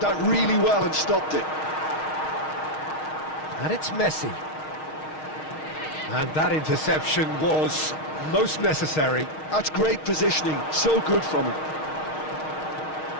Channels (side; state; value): right; late; 6.4 ms